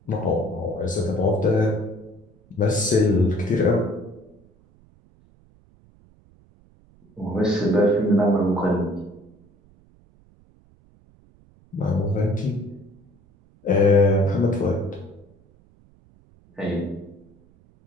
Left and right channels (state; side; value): noise; right; rumble, 30 dB below the sound